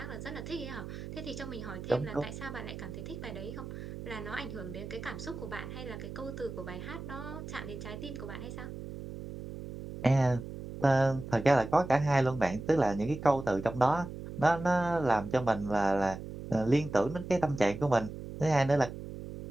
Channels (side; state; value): right; noise; hum, 10 dB below the sound